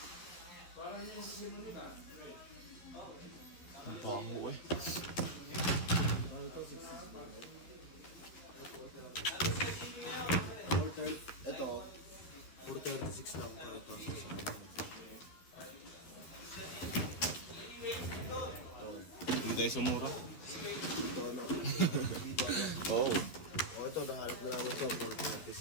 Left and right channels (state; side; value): late; right; 12 ms